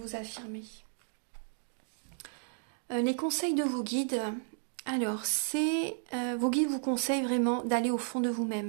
affirmer. Les conseils de vos guides. Alors, vos guides vous conseillent vraiment d'aller au fond de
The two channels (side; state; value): left; silent; digital silence